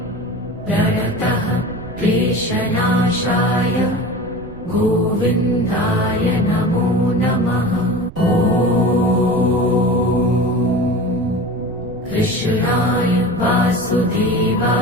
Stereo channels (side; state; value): right; noise; rumble, 17 dB below the sound